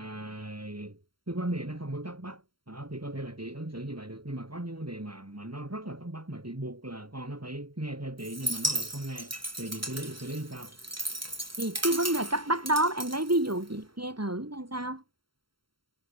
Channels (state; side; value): late; left; 0.73 ms